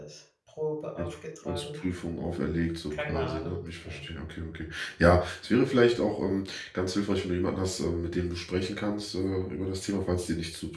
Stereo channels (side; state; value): both; identical; correlation 1.00